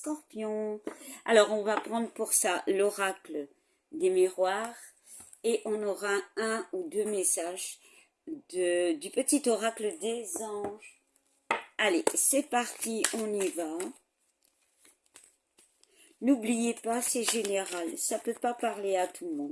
Alors on va prendre pour ça l'oracle des miroirs et on aura un ou deux messages du petit oracle des anges. Allez, c'est parti, on y va. N'oubliez pas, c'est général, ça ne peut pas parler à tout le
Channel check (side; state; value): both; identical; correlation 1.00